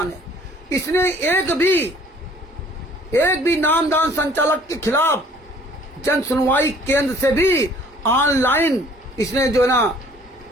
है। इसने एक भी नामदान संचालक के खिलाफ जन सुनवाई केंद्र से भी ऑनलाइन इसने जो है ना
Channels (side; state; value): both; normal; correlation 0.55